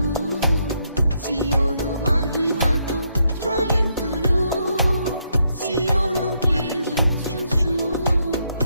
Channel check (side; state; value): both; inverted; correlation -0.76